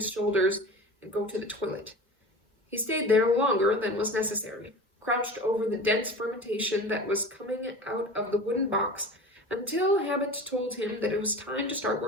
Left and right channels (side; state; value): both; normal; correlation 0.35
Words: shoulders and go to the toilet. He stayed there longer than was necessary, crouched over the dense fermentation that was coming out of the wooden box, until habit told him that it was time to start